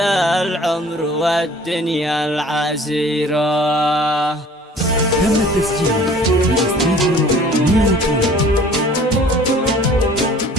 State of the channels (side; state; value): both; normal; correlation 0.50